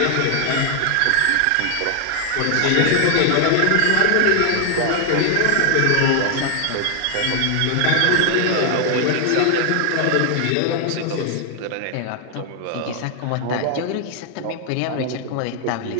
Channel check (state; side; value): different; both; correlation 0.00